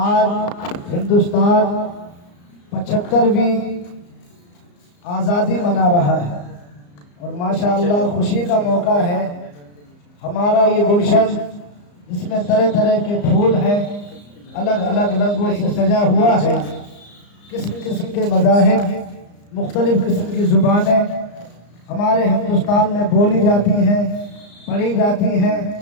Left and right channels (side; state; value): right; late; 34 ms